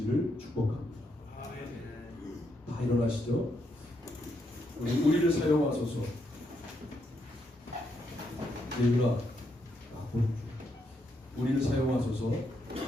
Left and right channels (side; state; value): both; normal; correlation 0.78